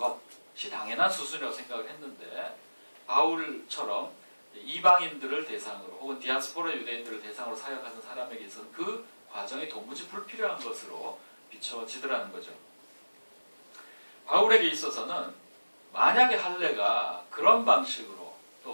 당연한 수순이라고 생각을 했는데 바울처럼 이방인들을 대상으로 혹은 디아스포라 유대인들을 대상으로 사역하는 사람에게 있어서는 그 과정이 도무지 불필요한 것으로 비춰지더라는 거죠. 바울에게 있어서는 만약에 할례가 그런 방식으로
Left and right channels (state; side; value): inverted; both; correlation -1.00